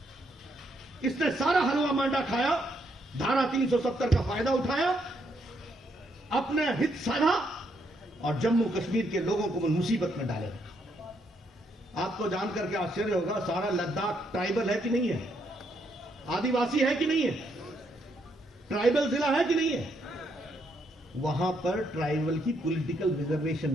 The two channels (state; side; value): normal; both; correlation 0.75